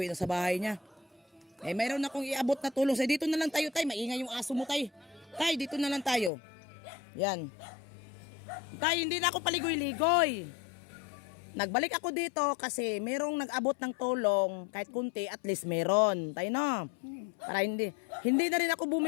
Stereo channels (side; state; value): right; drops out; at 6.3 s